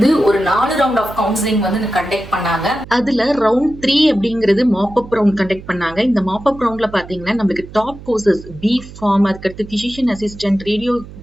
ஒரு 4 ரவுண்ட் ஆஃப் கவுன்சிலிங் கண்டக்ட் பண்ணாங்க. அதுல ரவுண்ட் 3 அப்படிங்கிறது மாப் அப் ரவுண்ட் கண்டக்ட் பண்ணாங்க. இந்த மாப் அப் ரவுண்ட்ல பாத்தீங்கன்னா நம்மளுக்கு டாப் கோர்சஸ் B.Pharm, அதுக்கடுத்து physician assistant,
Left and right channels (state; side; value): noise; right; hum, 16 dB below the sound